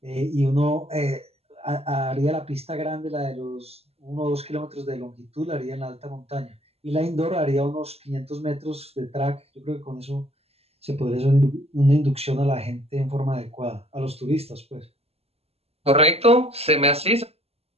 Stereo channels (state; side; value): late; left; 0.29 ms